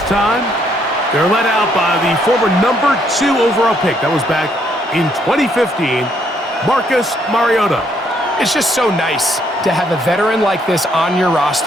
time. They're led out by the former number 2 overall pick. That was back in 2015, Marcus Mariota. It's just so nice to have a veteran like this on your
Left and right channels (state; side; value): normal; both; correlation 0.70